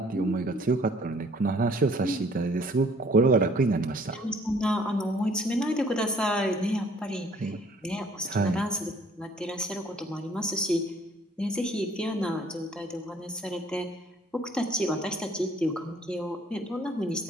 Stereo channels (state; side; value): normal; both; correlation 0.58